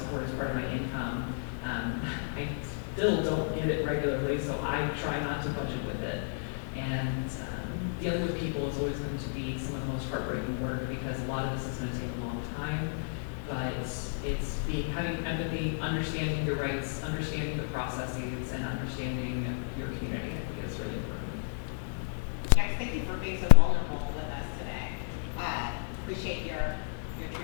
is part of my income. I still don't get it regularly, so I try not to budget with it. And dealing with people is always going to be some of the most heartbreaking work, because a lot of this is going to take a long time. But it's having empathy, understanding your rights, understanding the processes, and understanding your community. I think is really important. Guys, thank you for being so vulnerable with us today. Appreciate your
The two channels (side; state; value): right; silent; 55 dB below the other